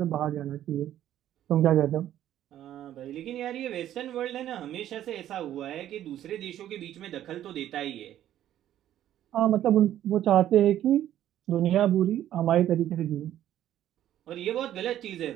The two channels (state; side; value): quieter; left; 11.9 dB